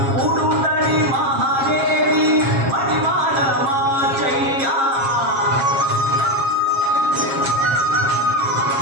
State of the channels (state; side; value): late; left; 7.4 ms